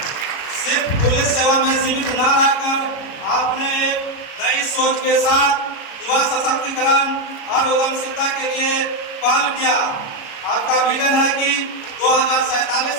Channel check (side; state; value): right; late; 37 ms